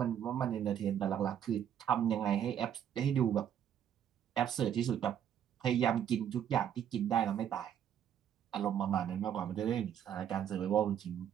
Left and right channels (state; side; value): quieter; left; 9.5 dB